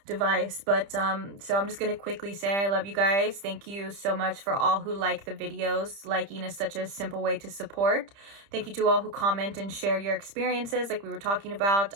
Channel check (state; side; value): late; left; 30 ms